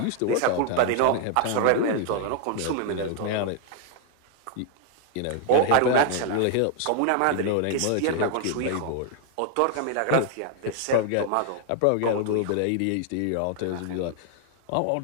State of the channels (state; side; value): different; both; correlation 0.00